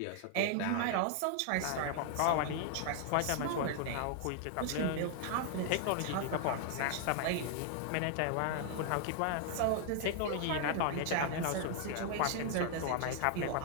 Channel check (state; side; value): different; both; correlation 0.00